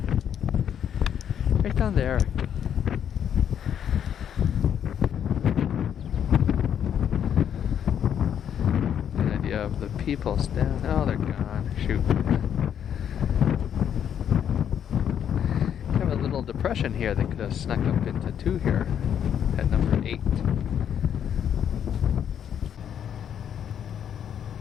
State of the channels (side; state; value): right; quieter; 9.0 dB